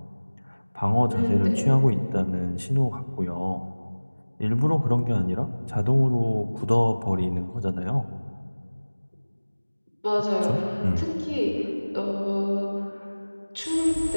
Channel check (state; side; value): inverted; both; correlation -1.00